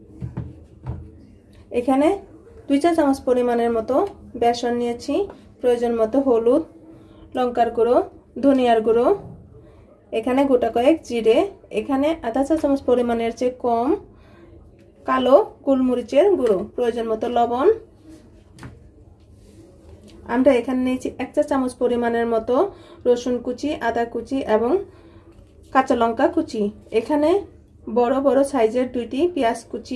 एखाने 2 चा चामच परिमाणेर मतो बेसन नियेछि, प्रयोजन मतो हलुद, लंकार गुঁড়ো, धनियार गुঁড়ো, एखाने गोटा कयेक जिरे, एखाने आधा चा चामच परिमाणेर चेয়ে कम कालो गोलमरिचेर गुঁড়ো, प्रयोजन मतो लवण। आमरा एखाने निয়েছি 1 चा चामच परिमाणेर मतो रसुन कुचि, आदा कुचि एवं काঁচা लंका कुचि। एखाने बड़ बड़ साइजेर 2टी पेঁয়াজ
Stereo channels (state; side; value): identical; both; correlation 1.00